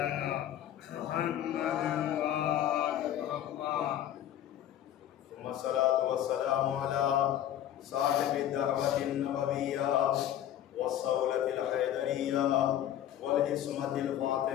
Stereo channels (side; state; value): right; quieter; 11.5 dB